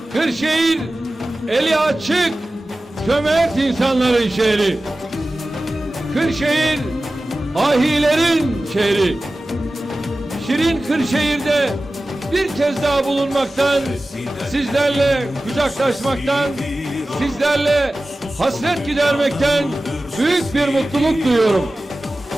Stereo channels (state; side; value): normal; both; correlation 0.96